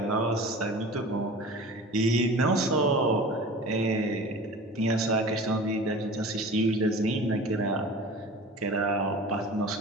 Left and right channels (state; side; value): normal; both; correlation 0.38